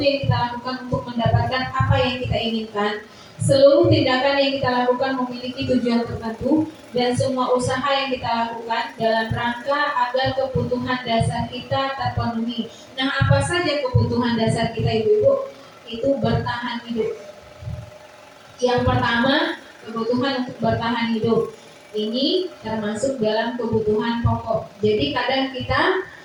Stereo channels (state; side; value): identical; both; correlation 1.00